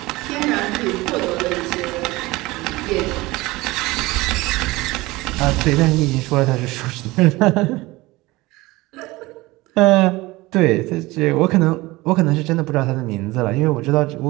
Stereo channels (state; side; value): quieter; left; 20.7 dB